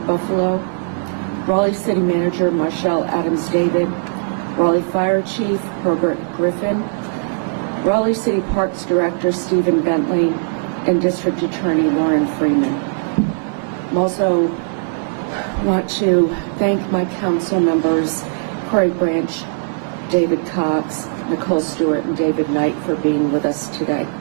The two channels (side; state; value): left; silent; digital silence